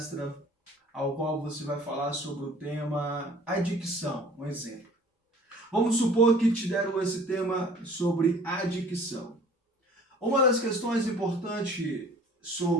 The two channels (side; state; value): both; normal; correlation 0.50